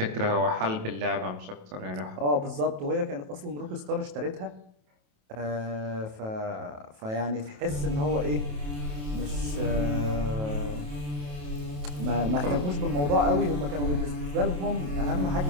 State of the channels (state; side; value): late; left; 28 ms